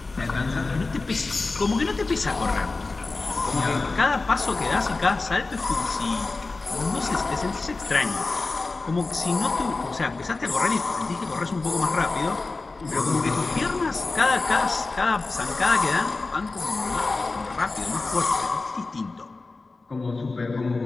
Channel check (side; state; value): right; quieter; 3.6 dB